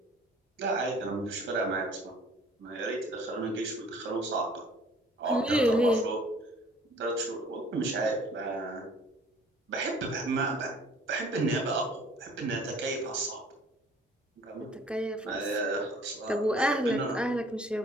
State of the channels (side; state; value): both; normal; correlation 0.53